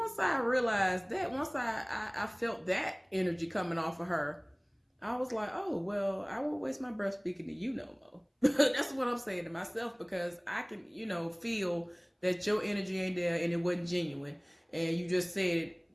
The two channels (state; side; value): identical; both; correlation 1.00